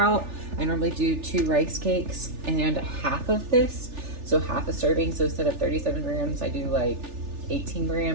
I normally do 2 rice cakes and half of this, so half a serving. So instead of 37 grams, I do like 18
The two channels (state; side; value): late; left; 3.4 ms